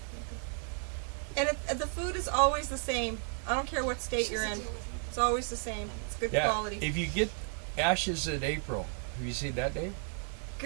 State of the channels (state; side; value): quieter; left; 39.8 dB